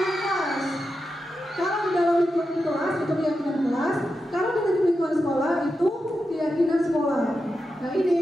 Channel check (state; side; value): normal; both; correlation 0.89